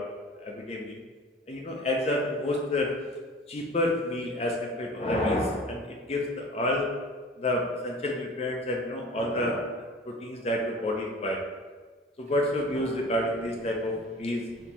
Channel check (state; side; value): normal; both; correlation 0.41